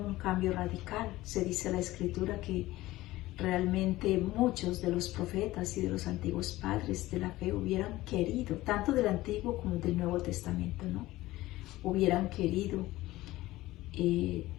cambio radical. Se dice en la Escritura que realmente muchos de los profetas y de los antiguos padres de la fe hubieran querido, tanto del Antiguo como del Nuevo Testamento, ¿no? Hubieran querido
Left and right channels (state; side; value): quieter; right; 17.4 dB